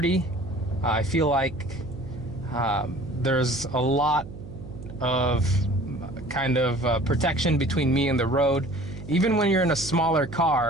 I feel like there's a lot of kind of protection between me and the road. Even when you're in a smaller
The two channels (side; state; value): right; noise; hum, 13 dB below the sound